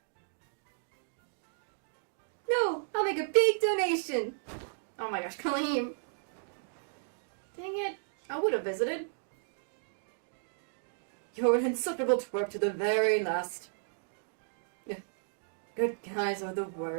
No, I'll make a big donation. Oh my gosh, Kaleem. Dang it. I would have visited. You're an insufferable twerp to the very last. Good guys are the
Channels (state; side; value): silent; left; digital silence